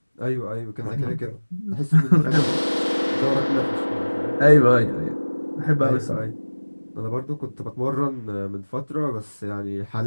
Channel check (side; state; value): both; inverted; correlation -1.00